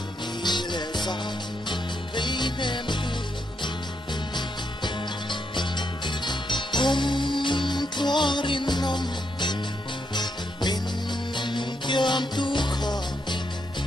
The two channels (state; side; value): normal; both; correlation 0.80